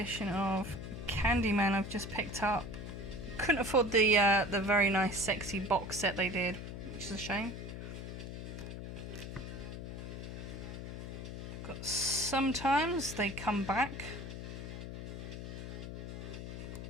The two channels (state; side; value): noise; left; hum, 8 dB below the sound